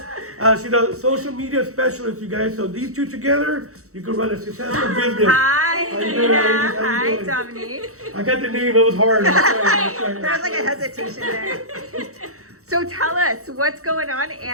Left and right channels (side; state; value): left; late; 0.64 ms